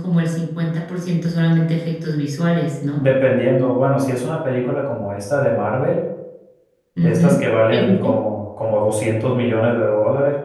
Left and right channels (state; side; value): identical; both; correlation 1.00